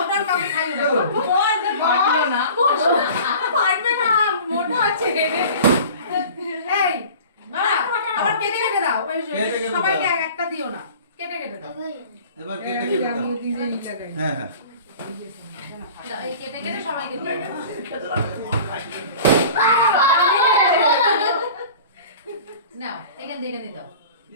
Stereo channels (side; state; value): both; inverted; correlation -0.42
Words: কাউকে খাইও না পারলো না পারবে না মোটা আছে এই বাবা আবার কেটে কেটে দাও ওই সবাইকে একটা দিও না কেটে কেটে দাও এবার কেটে কেটে দাও। নিজে নিতে দেয় হ্যাঁ হ্যাঁ এই কেটে কেটে সবাইকে দিও নাও এখান থেকে দাও